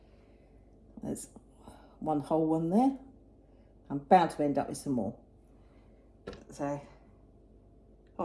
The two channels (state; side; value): identical; both; correlation 1.00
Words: There's one whole one there. I'm bound to end up with some more. So,